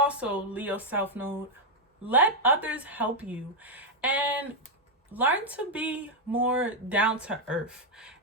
Leo South Node, let others help you and learn to be more down to earth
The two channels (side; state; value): both; normal; correlation 0.01